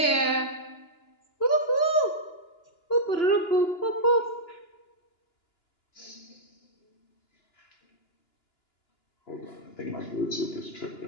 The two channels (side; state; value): right; late; 2.9 ms